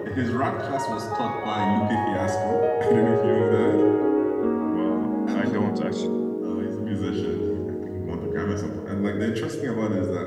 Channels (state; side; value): identical; both; correlation 1.00